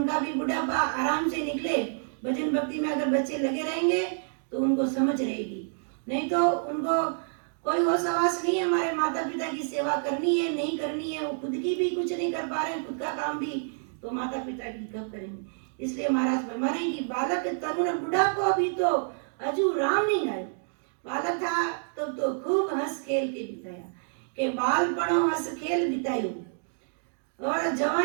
भी बुढ़ापा आराम से निकले। भजन भक्ति में अगर बच्चे लगे रहेंगे तो उनको समझ रहेगी, नहीं तो उनको कोई होश आवास नहीं है हमारे माता पिता की सेवा करनी है नहीं करनी है, वो खुद की भी कुछ नहीं कर पा रहे हैं, खुद का काम भी तो माता पिता की कब करेंगे। इसलिए महाराज फरमा रहे हैं कि बालक तरुण बुढ़ापो भी तो अजू राम नहीं गायो। बालक था तब तो खूब हंस खेल के बिताया, के बालपणो हंस खेल बितायो, और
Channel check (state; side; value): silent; left; digital silence